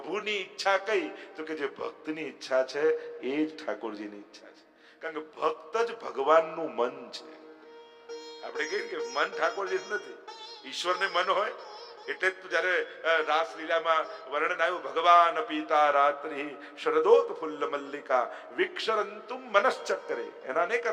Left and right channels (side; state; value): both; identical; correlation 1.00